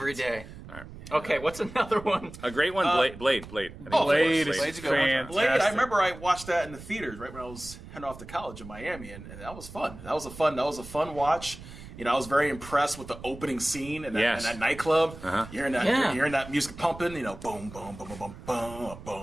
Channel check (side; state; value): right; noise; rumble, 15 dB below the sound